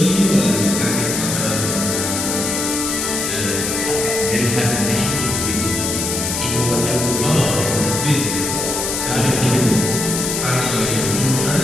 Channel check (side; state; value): left; noise; hiss, 2 dB below the sound